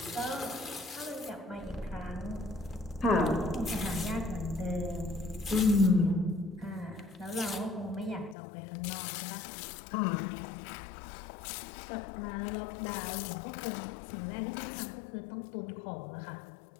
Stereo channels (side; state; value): right; drops out; at 8.3 s